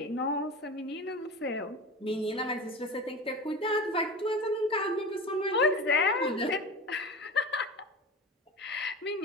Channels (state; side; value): normal; both; correlation 0.30